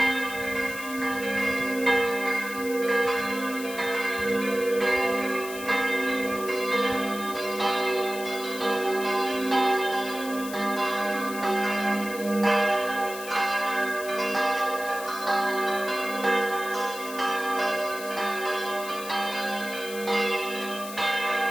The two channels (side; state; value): left; noise; hiss, 12 dB below the sound